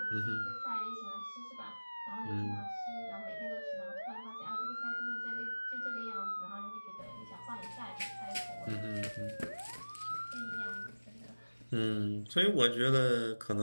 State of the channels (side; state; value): both; inverted; correlation -1.00